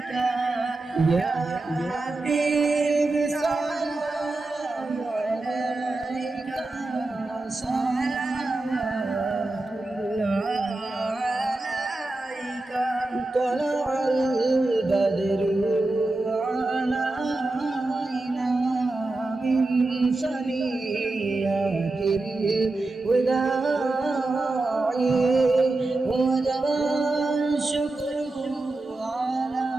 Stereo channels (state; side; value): quieter; left; 3.0 dB